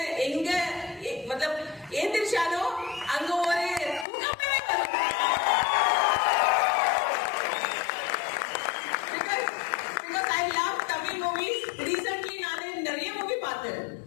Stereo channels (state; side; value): drops out; right; at 4.0 s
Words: எங்க மத்தலப் ஏந்திரிச்சாலும் அங்க ஒரு because I love Tamil movies. Recently நான் நிறைய மூவி பார்த்தேன்.